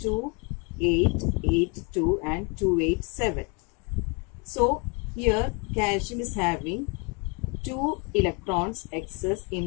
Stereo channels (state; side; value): quieter; right; 32.1 dB